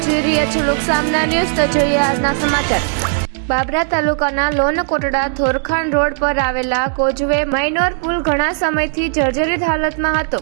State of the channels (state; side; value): silent; left; digital silence